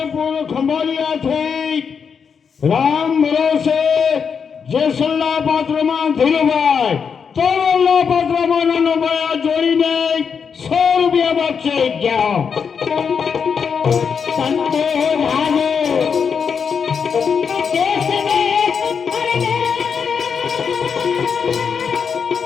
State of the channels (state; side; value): quieter; right; 6.4 dB